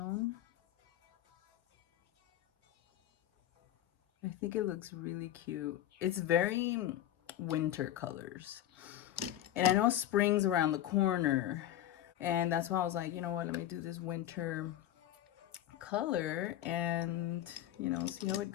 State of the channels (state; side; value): quieter; right; 12.4 dB